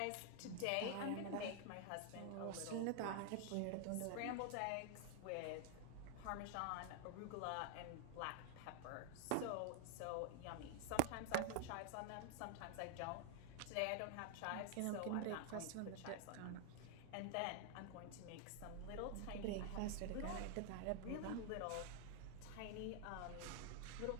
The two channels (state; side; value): different; both; correlation 0.00